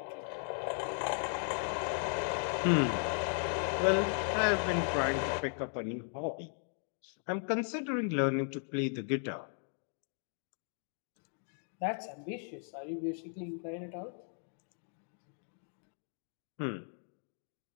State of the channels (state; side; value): silent; right; 53 dB below the other